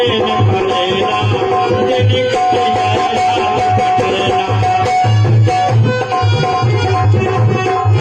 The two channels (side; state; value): both; identical; correlation 1.00